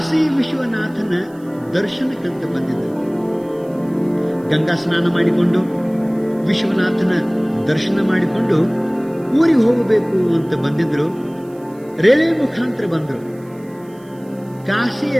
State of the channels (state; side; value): noise; right; hiss, 29 dB below the sound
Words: ವಿಶ್ವನಾಥನ ದರ್ಶನಕ್ಕಂತ ಬಂದಿದ್ದರು. ಗಂಗಾ ಸ್ನಾನ ಮಾಡಿಕೊಂಡು ವಿಶ್ವನಾಥನ ದರ್ಶನ ಮಾಡಿಕೊಂಡು ಊರಿಗೆ ಹೋಗಬೇಕು ಅಂತ ಬಂದಿದ್ರು. ರೈಲ್ವೆ ಮುಖಾಂತರ ಬಂದರು. ಕಾಶಿಯ